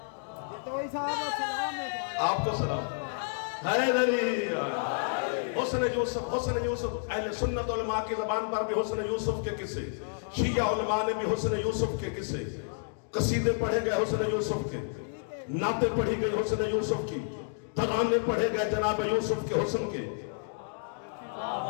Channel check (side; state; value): right; silent; digital silence